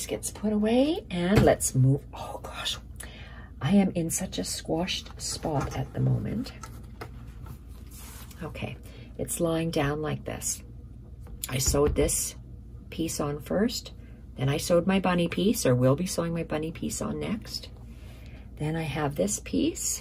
gets put away, and let's move. Oh gosh, I am in such a squashed spot at the moment. Okay, it's lying down like this. I sewed this piece on first, then I sewed my bunny piece, or will be sewing my bunny piece on next. Then I have this piece,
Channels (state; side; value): identical; both; correlation 1.00